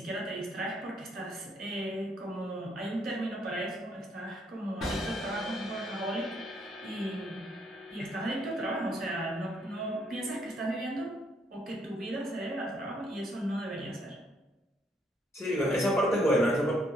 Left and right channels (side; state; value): both; normal; correlation 0.70